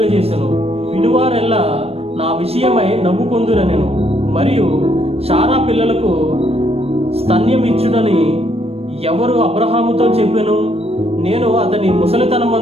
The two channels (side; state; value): left; late; 0.29 ms